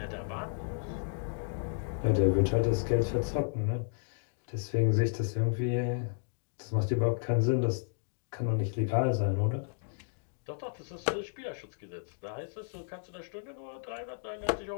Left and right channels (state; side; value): silent; right; digital silence